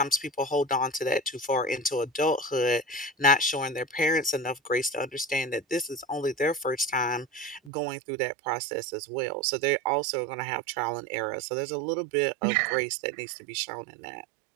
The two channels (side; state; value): left; drops out; at 7.7 s